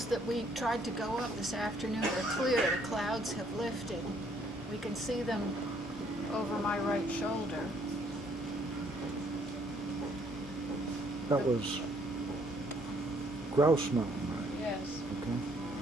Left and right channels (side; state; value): both; normal; correlation 0.66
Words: that we tried to go up this afternoon are clear. The clouds have lifted. We can see them over my right shoulder. That was Grouse Mountain, right? Yes. Okay.